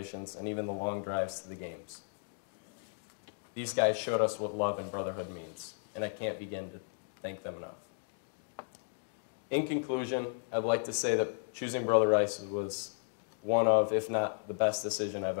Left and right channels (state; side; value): silent; right; digital silence